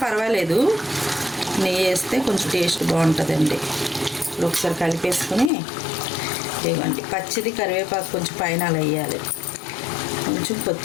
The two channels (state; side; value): drops out; right; at 5.5 s